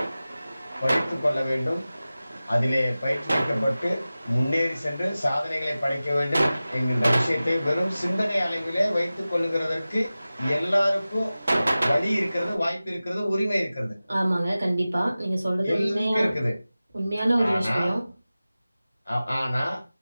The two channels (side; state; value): both; inverted; correlation -0.96